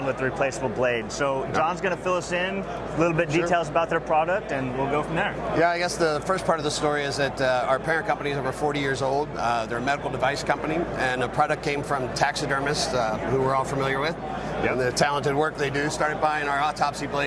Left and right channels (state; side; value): identical; both; correlation 1.00